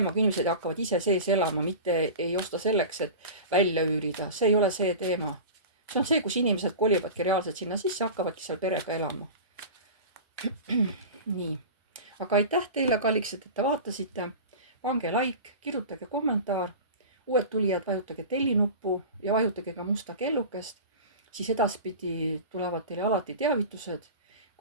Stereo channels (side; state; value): both; inverted; correlation -0.32